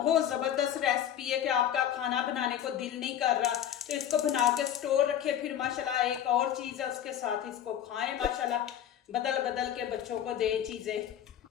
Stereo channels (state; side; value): quieter; right; 10.2 dB